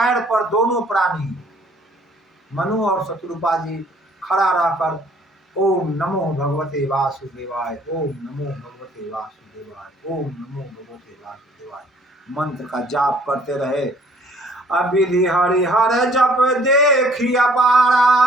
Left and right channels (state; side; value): normal; both; correlation 0.59